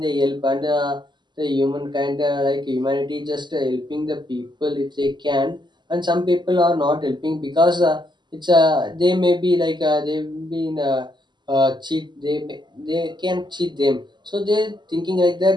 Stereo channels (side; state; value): left; late; 0.21 ms